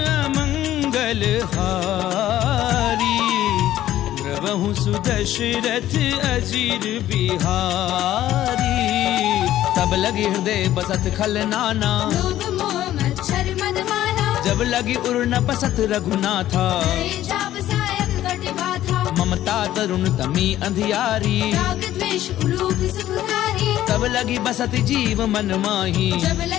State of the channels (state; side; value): quieter; right; 13.2 dB